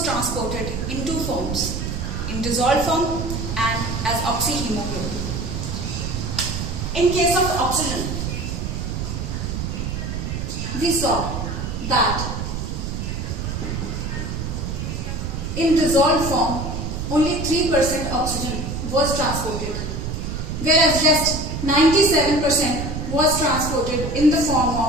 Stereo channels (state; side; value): noise; right; rumble, 4 dB below the sound